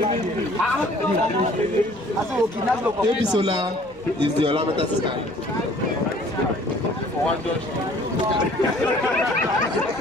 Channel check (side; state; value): left; noise; hum, 26 dB below the sound